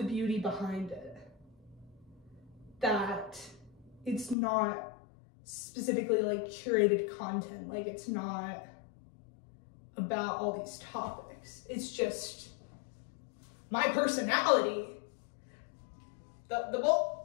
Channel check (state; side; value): drops out; right; at 4.4 s